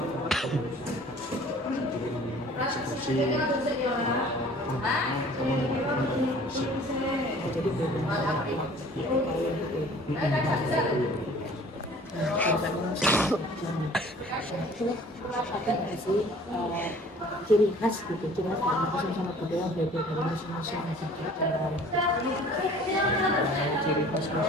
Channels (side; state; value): both; normal; correlation 0.50